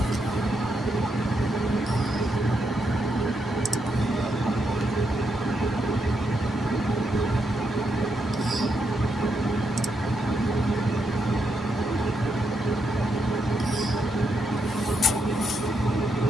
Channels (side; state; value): both; normal; correlation 0.81